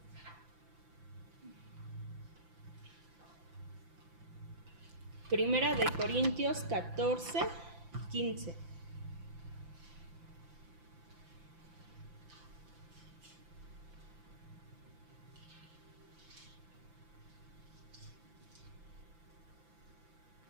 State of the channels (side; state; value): left; late; 5.9 ms